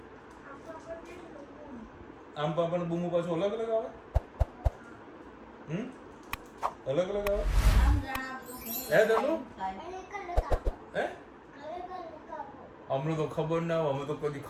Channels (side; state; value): both; identical; correlation 1.00